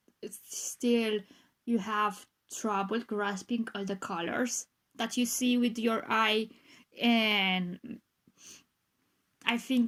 still you have trouble grasping all the colors that you see with your eye. And I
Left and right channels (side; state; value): both; identical; correlation 1.00